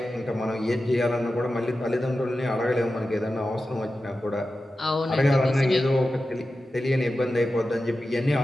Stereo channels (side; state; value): both; normal; correlation 0.93